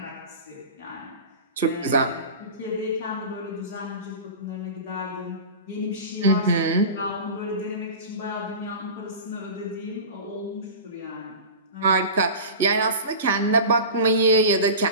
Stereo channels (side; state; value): both; inverted; correlation -0.32